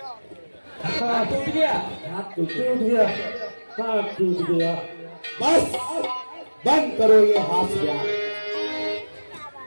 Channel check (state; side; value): inverted; both; correlation -1.00